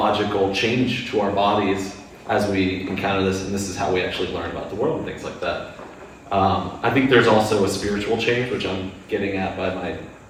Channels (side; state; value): both; identical; correlation 1.00